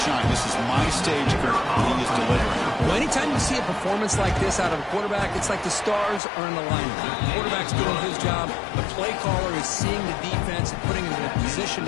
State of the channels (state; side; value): drops out; right; at 6.2 s